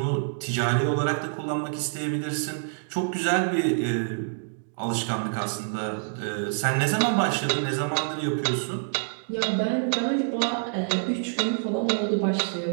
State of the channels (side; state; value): left; silent; digital silence